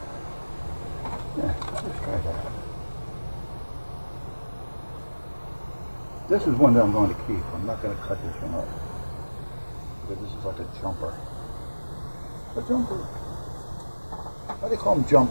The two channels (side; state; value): both; inverted; correlation -1.00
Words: Let's try that. This is one that I'm going to keep. I'm not going to cut this one up, because this is like a jumper. A jumper. Why do they call him